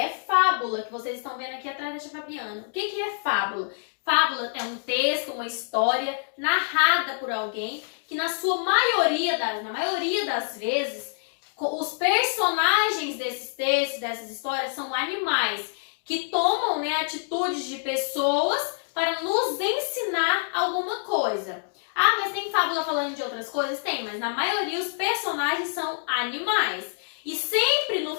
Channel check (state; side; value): silent; right; digital silence